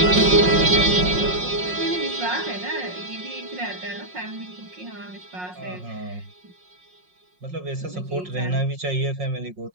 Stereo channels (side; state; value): left; late; 5.5 ms